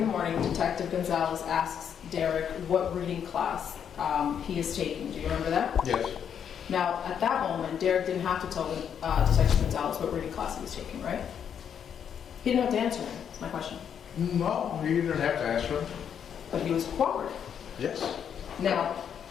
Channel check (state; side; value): quieter; right; 8.2 dB